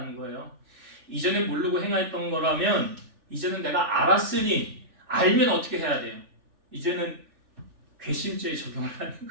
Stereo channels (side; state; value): left; late; 3.4 ms